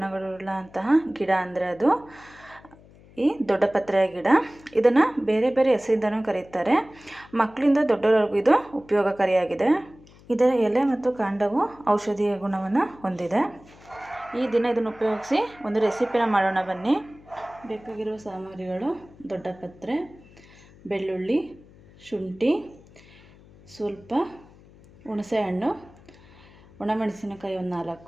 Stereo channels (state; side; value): noise; left; hum, 24 dB below the sound